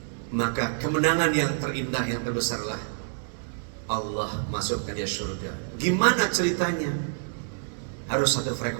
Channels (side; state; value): left; silent; digital silence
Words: Maka kemenangan yang terindah, yang terbesarlah Allah masukkan dia surga. Gimana ceritanya? Harus satu